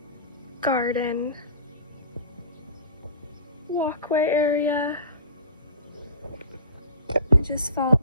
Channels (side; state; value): both; inverted; correlation -0.38